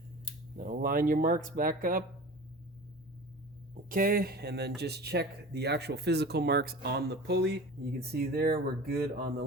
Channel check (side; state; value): both; normal; correlation 0.37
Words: Now line your marks back up. Okay, and then just check the actual physical marks on the pulley. You can see there we're good on the